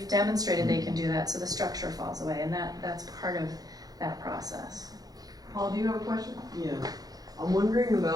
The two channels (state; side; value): late; left; 0.18 ms